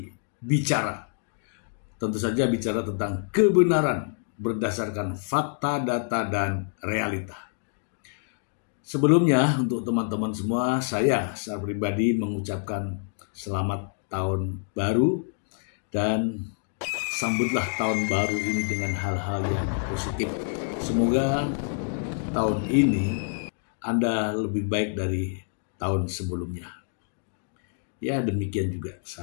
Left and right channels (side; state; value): right; silent; digital silence